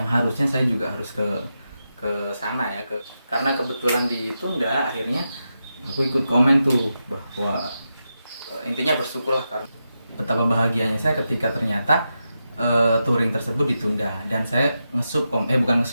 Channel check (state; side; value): inverted; both; correlation -0.88